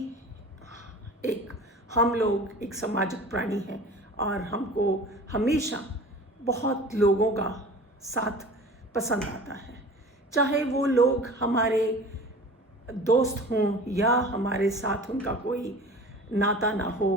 हम लोग एक सामाजिक प्राणी हैं और हमको हमेशा बहुत लोगों का साथ पसंद आता है। चाहे वो लोग हमारे दोस्त हों या हमारे साथ उनका कोई नाता ना हो,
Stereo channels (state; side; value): normal; both; correlation 0.40